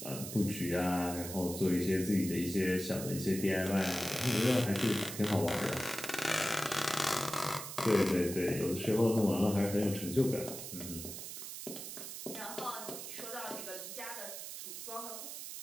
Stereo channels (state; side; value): noise; right; hiss, 8 dB below the sound